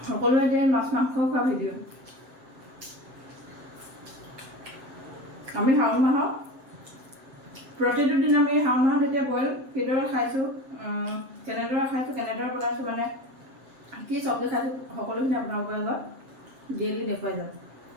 সকলোৱে এতিয়া মাছ মাংস খোৱা ভিডিঅ' আমি শাওণ মাহত প্ৰতিটো দিন আমি শাওণ মাহত এতিয়া বইল কিদৰে খাইছোঁ কেনেদৰে খাইছোঁ কেনেদৰে বনাইছোঁ মানে কি চব্জি খাইছোঁ সকলোখিনি আপোনালোকৰ আগত ডেইলি দেখুৱাই যাম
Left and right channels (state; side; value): late; left; 7.6 ms